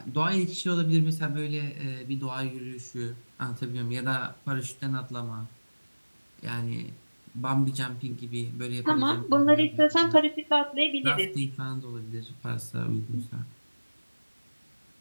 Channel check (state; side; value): inverted; both; correlation -1.00